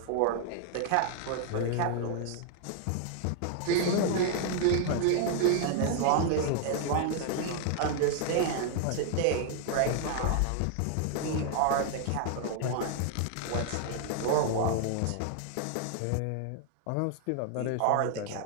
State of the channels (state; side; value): different; both; correlation 0.00